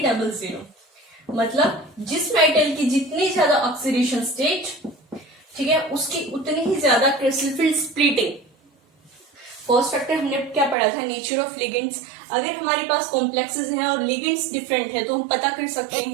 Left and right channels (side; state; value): left; drops out; at 10.8 s